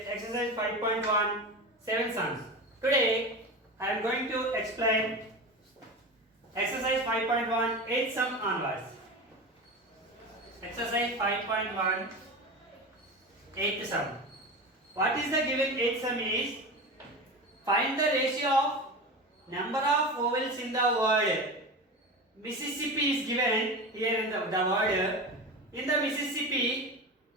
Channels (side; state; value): both; normal; correlation 0.27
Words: exercise 5.1 7 sums. Today, I am going to explain exercise 5.1 8 sum onwards. Exercise 5.1 8 sum. What is the given 8 sum is find the ratio of number of vowels in the word Mississippi is given here in the word. In the Mississippi,